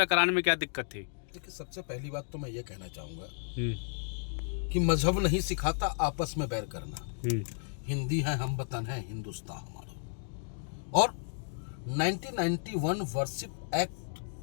कराने में क्या दिक्कत थी? देखिए, सबसे पहली बात तो मैं ये कहना चाहूँगा हम्म। कि मजहब नहीं सिखाता आपस में बैर करना। हम्म। हिंदी है, हम वतन है, हिंदुस्तान हमारा। और 1991 वर्शिप एक्ट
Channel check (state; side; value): silent; right; digital silence